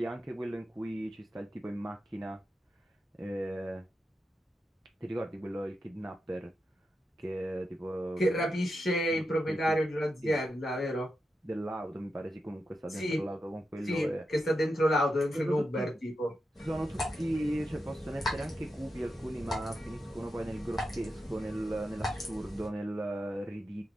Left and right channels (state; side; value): normal; both; correlation 0.88